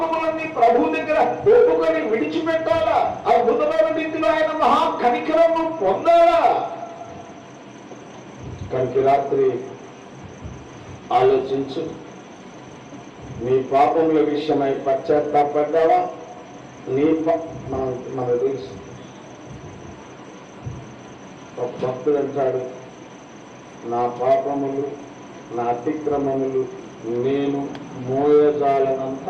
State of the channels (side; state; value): both; identical; correlation 1.00